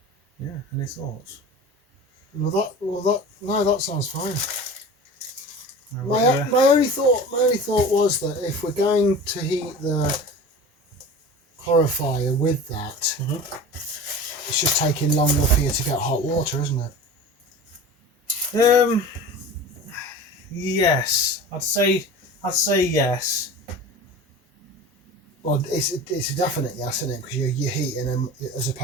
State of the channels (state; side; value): normal; both; correlation 0.35